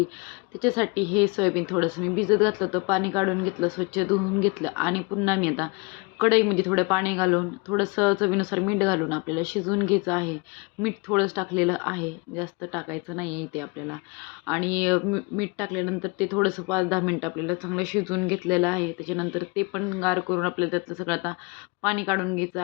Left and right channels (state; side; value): quieter; right; 28.3 dB